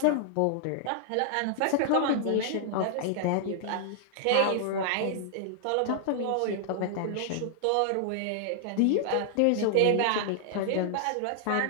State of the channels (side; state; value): both; different; correlation 0.00